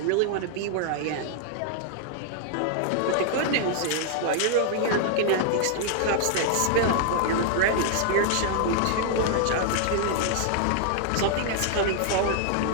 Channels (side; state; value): both; different; correlation -0.01